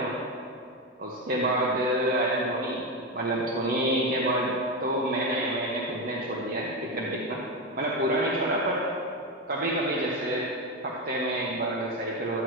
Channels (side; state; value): both; normal; correlation 0.13